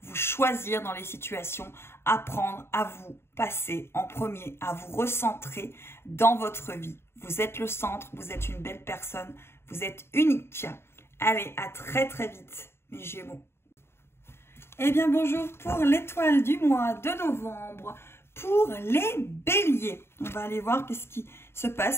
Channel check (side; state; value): right; late; 0.12 ms